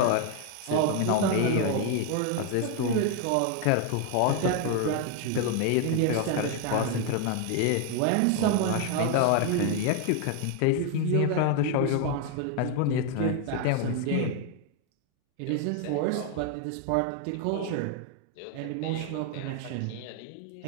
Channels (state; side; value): different; both; correlation 0.01